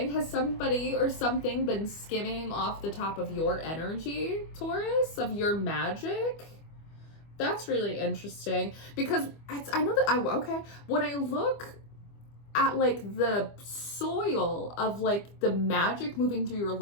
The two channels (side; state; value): right; late; 25 ms